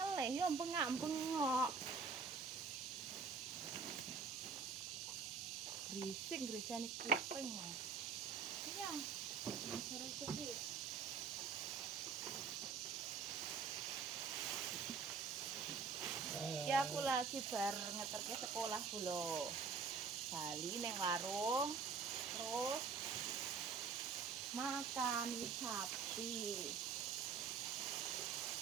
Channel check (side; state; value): left; quieter; 5.3 dB